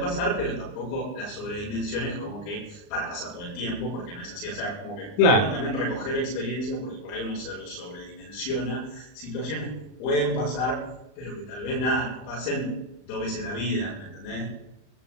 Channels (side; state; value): right; late; 39 ms